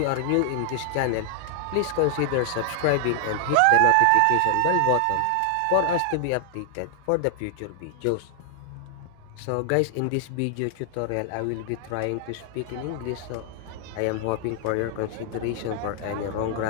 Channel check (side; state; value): both; different; correlation 0.00